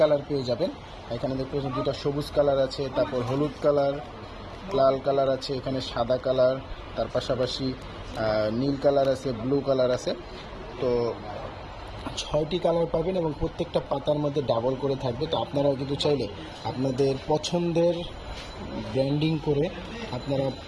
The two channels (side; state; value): both; identical; correlation 1.00